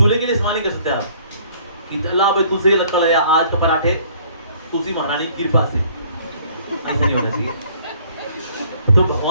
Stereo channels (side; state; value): both; inverted; correlation -0.57